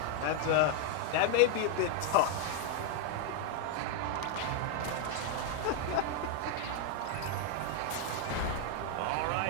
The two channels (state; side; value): different; both; correlation 0.00